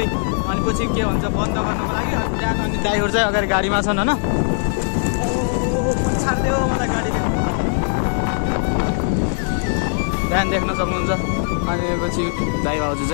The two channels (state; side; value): silent; right; digital silence